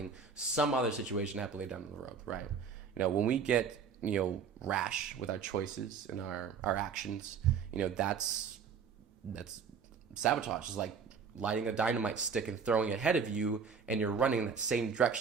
some other situation to happen later down the road, right? You know, when we get, you know, rash with our choices and our actions, you know, that's sabotage. It's like lighting a dynamite stick and throwing it ahead of you, and you're running in that same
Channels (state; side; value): quieter; left; 6.1 dB